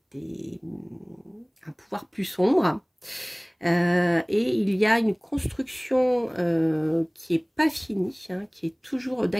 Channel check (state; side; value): identical; both; correlation 1.00